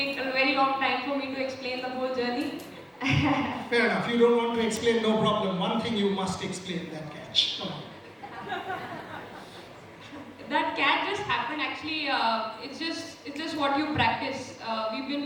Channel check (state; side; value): identical; both; correlation 1.00